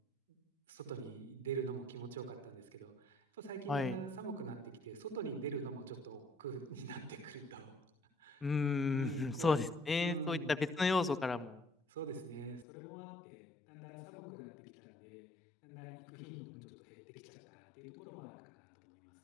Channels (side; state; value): right; drops out; at 12.7 s